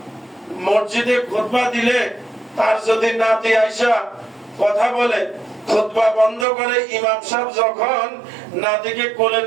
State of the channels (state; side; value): drops out; left; at 6.5 s